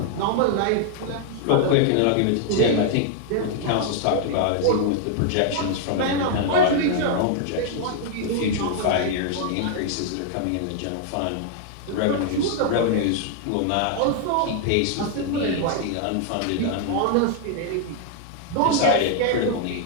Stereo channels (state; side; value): different; both; correlation 0.00